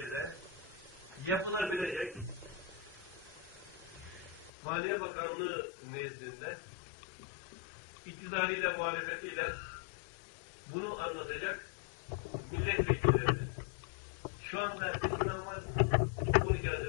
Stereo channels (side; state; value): right; drops out; at 4.5 s